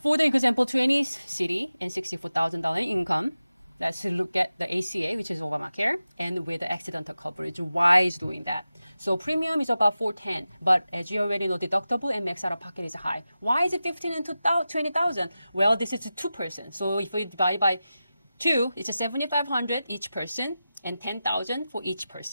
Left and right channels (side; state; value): both; inverted; correlation -0.94